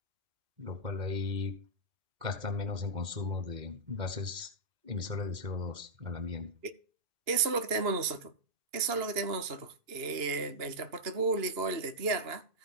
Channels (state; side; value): late; left; 2.8 ms